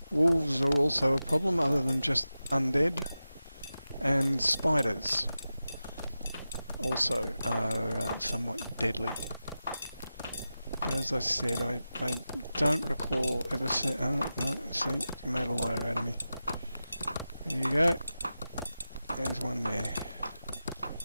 Wolves are also a problem, other than just undead, and spiders also are somewhat deadly. But as I said, I don't recall ever seeing... Oh, no, see, you made a liar out of me. There you go. There's one there.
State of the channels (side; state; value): both; inverted; correlation -0.93